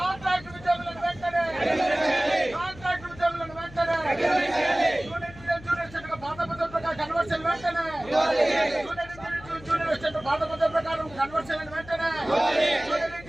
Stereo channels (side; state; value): left; noise; hum, 18 dB below the sound